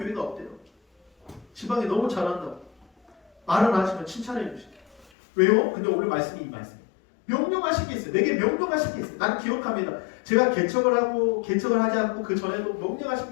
없대요. 지방에 너무 잘한다고 말은 하시면 칭찬해 주시죠. 왜요? 근데 오늘 말씀이 이 말씀이에요. 명령하신 게 있어요. 내게 명령하신 게 있어요. 나는 기억합니다. 제가 개척을 하지 않고 그 전에도 명령하신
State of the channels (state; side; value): drops out; right; at 5.1 s